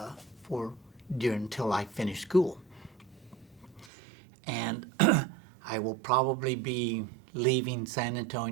I finish school. And I will probably be leaving San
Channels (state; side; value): drops out; left; at 3.9 s